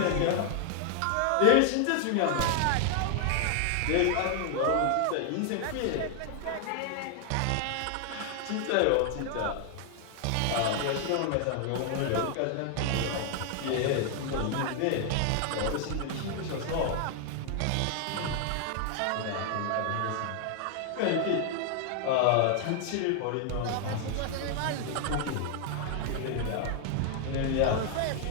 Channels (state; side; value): different; both; correlation 0.00